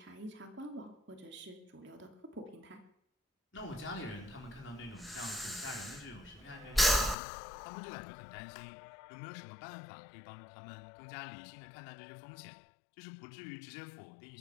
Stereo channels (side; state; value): right; drops out; at 7.2 s